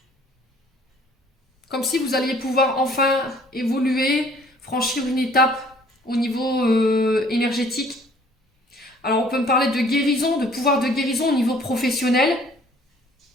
Comme si vous alliez pouvoir enfin évoluer, franchir une étape au niveau énergétique. Alors, on peut me parler de guérison, de pouvoir de guérison au niveau professionnel.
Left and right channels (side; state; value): both; normal; correlation 0.56